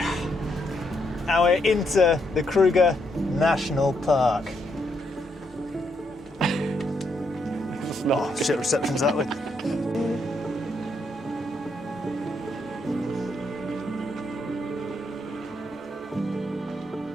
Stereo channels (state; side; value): normal; both; correlation 0.77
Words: Now we're into the Kruger National Park. Oh shit, reception's that way.